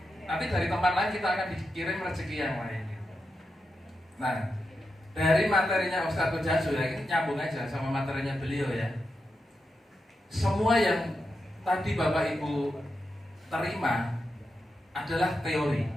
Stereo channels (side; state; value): both; normal; correlation 0.87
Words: Nanti dari tempat lain kita akan dikirim rezeki yang lain. Nah, dari materinya Ustadz Jasu ya, ini nyambung aja sama materinya beliau ya. Semua yang tadi Bapak Ibu terima adalah teori.